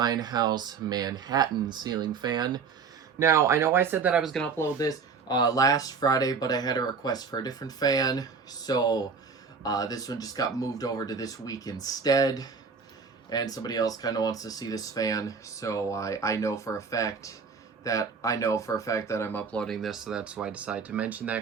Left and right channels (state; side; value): quieter; left; 5.5 dB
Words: House Manhattan ceiling fan. Now, I know I said that I was going to upload this last Friday, but I had a request for a different fan, so this one just got moved over to this week instead, and somebody else kind of wants to see this fan, so I know for a fact that I'm uploading this, so that's why I decided to mention